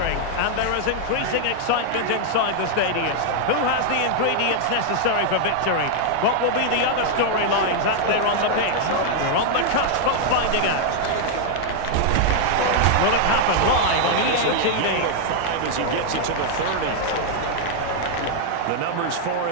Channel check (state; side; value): different; both; correlation -0.01